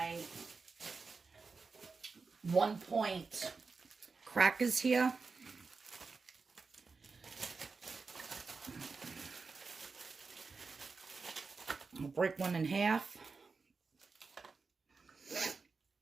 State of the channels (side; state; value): left; quieter; 4.5 dB